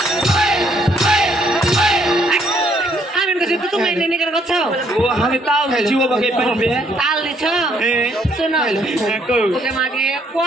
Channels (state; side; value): normal; both; correlation 0.68